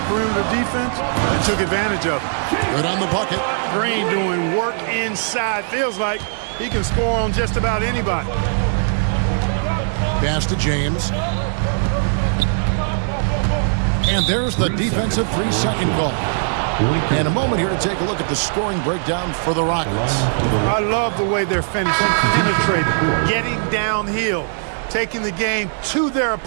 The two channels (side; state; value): left; silent; 66 dB below the other